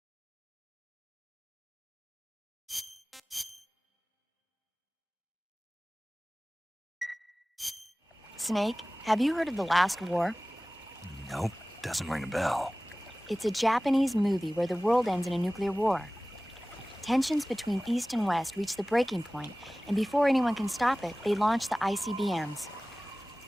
Snake, have you heard of The Last War? Nope, doesn't ring a bell. It's a Japanese movie where the world ends in a nuclear war. Tensions between East and West reach the breaking point, and before anyone can stop it, they launch the ICBMs.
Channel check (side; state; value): both; normal; correlation 0.98